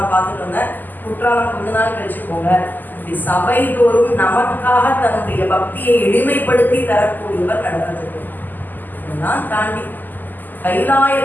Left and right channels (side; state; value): right; late; 0.087 ms